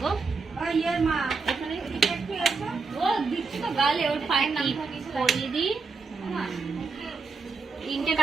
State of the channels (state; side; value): quieter; left; 4.6 dB